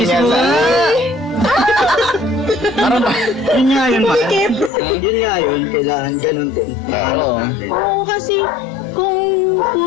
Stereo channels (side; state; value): right; drops out; at 4.7 s